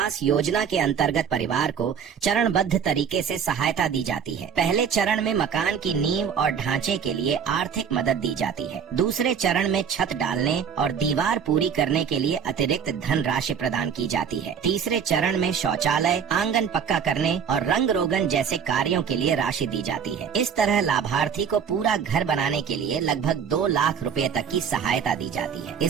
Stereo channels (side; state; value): left; quieter; 7.3 dB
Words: योजना के अंतर्गत परिवार को चरणबद्ध तरीके से सहायता दी जाती है। पहले चरण में मकान की नींव और ढांचे के लिए आर्थिक मदद दी जाती है। दूसरे चरण में छत डालने और दीवार पूरी करने के लिए अतिरिक्त धन राशि प्रदान की जाती है। तीसरे चरण में शौचालय, आंगन पक्का करने और रंग रोगन जैसे कार्यों के लिए राशि दी जाती है। इस तरह लाभार्थी को पूरा घर बनाने के लिए लगभग 2 लाख रुपए तक की सहायता दी जाती है।